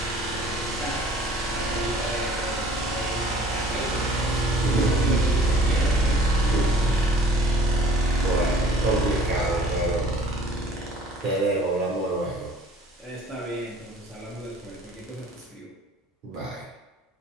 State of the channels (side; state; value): both; normal; correlation 0.52